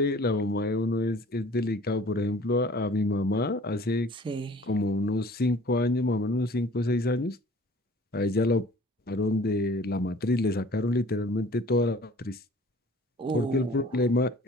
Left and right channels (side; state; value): both; normal; correlation 0.49